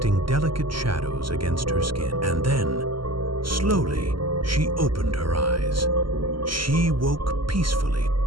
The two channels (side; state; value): left; late; 0.73 ms